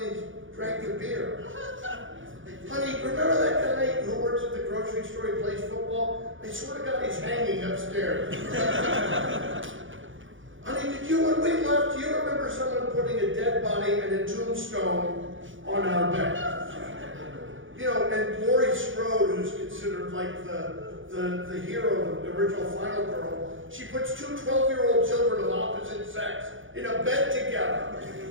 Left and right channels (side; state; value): left; late; 0.57 ms